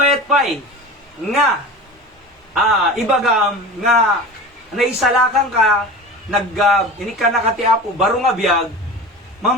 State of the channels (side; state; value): both; normal; correlation 0.33